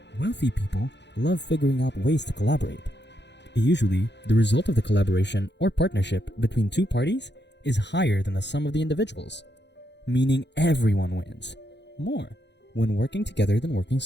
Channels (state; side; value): late; right; 0.51 ms